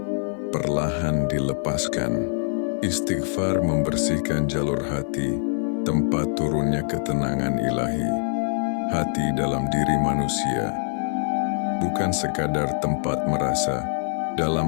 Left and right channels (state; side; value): silent; right; 62 dB below the other